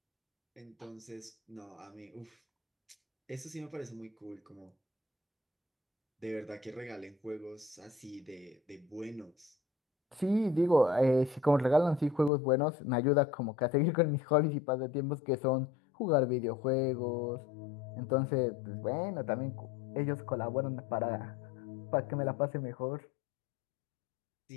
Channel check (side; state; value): right; drops out; at 12.3 s